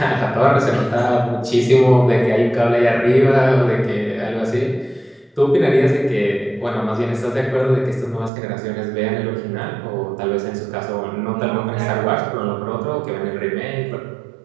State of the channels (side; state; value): left; drops out; at 8.3 s